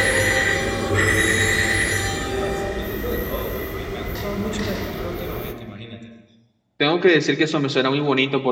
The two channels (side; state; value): both; identical; correlation 1.00